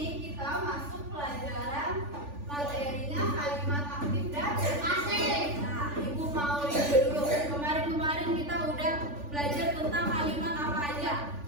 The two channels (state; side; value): late; left; 3.4 ms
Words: kita masuk pelajaran materinya kalimat aktif dan pasif. Nah, Ibu mau review dulu. Kemarin kita udah belajar tentang kalimat apa aja?